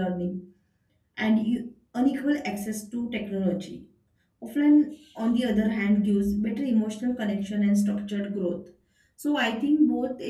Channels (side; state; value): both; identical; correlation 1.00